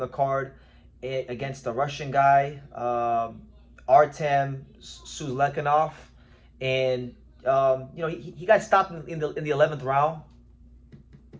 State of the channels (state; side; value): identical; both; correlation 1.00